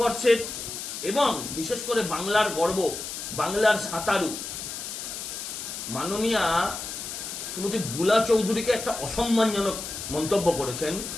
এবং বিশেষ করে বাংলার গর্ব, বাংলার সাঁতারু মাননীয়া শ্রীমতী বুলা চৌধুরীকে একটা অসম্মানজনক মন্তব্য করেছেন।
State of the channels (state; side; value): noise; left; hiss, 7 dB below the sound